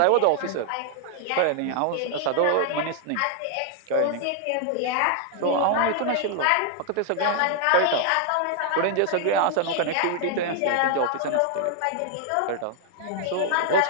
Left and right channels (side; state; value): both; different; correlation 0.00